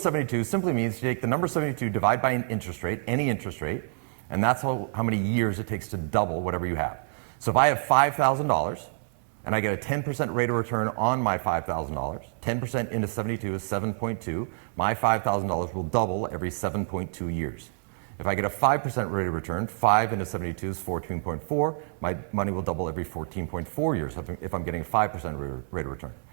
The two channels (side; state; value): left; silent; 58 dB below the other